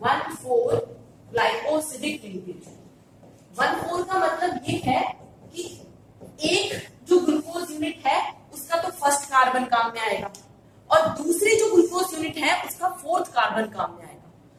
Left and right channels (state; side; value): identical; both; correlation 1.00